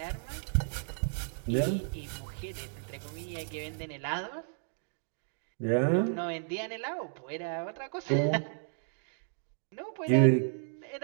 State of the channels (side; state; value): left; silent; digital silence